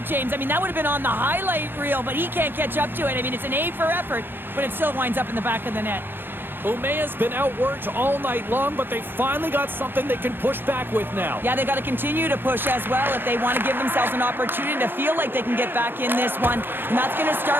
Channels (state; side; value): late; left; 0.10 ms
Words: James. I mean, that would have been on the highlight reel, but he can't catch up to it. I mean, it's an A for effort, but it still winds up in the back of the net. Umea's been outworked all night long, but they finally got something they can push back with now. Yeah, they got to continue to push as well if they want to give themselves an opportunity to feel like they can get back in this one. And that's going to